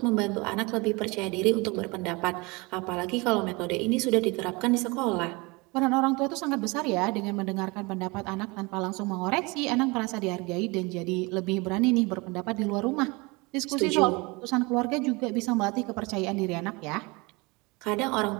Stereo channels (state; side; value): quieter; left; 26.1 dB